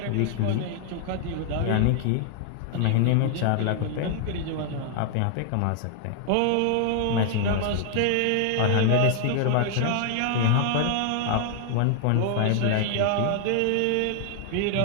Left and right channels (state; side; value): different; both; correlation 0.00